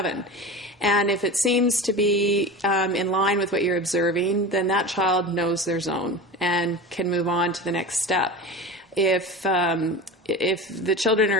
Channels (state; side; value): normal; both; correlation 0.30